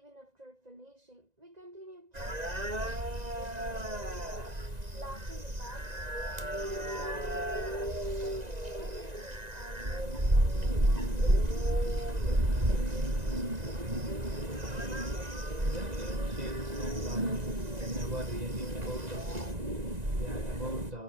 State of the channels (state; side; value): late; left; 1.9 ms